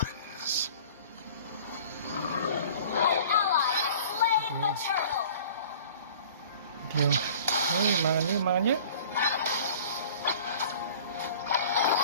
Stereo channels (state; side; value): inverted; both; correlation -0.47